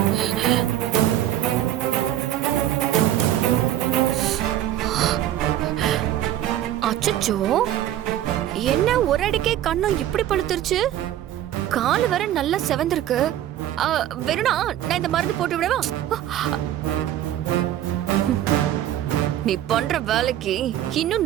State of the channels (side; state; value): left; quieter; 12.3 dB